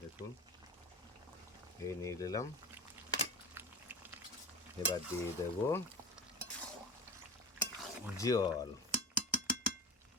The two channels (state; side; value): normal; both; correlation 0.30